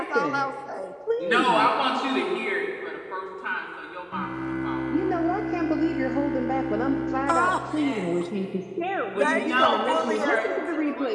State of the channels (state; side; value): identical; both; correlation 1.00